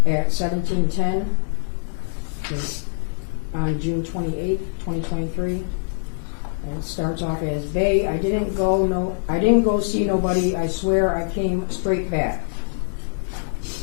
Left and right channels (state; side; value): silent; right; 63 dB below the other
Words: at 17:10 on June 28th, 2023. And it starts off as, Bae, I didn't go see nobody, I swear I came straight back.